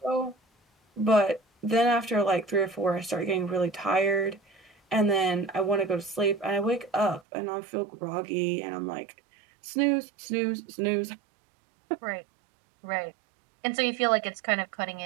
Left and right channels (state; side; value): drops out; left; at 7.2 s